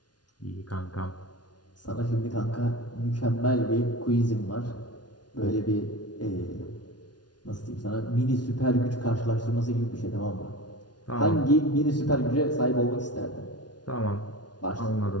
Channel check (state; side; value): late; right; 0.69 ms